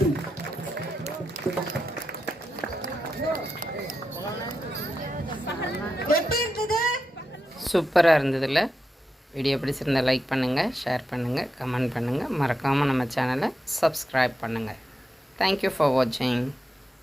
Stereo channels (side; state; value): both; normal; correlation 0.87